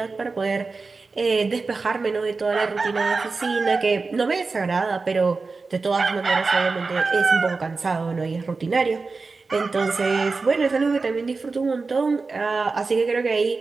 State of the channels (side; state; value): left; quieter; 4.1 dB